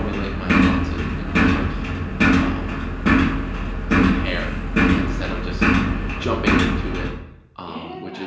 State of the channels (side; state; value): both; identical; correlation 1.00